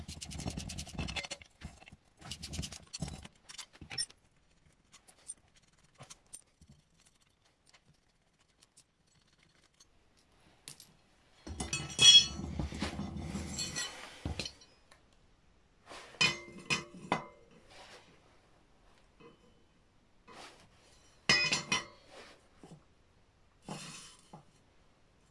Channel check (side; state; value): both; identical; correlation 1.00